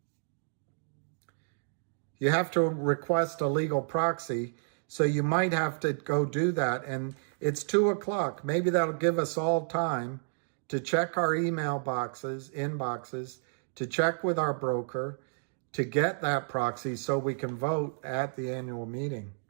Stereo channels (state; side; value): silent; left; digital silence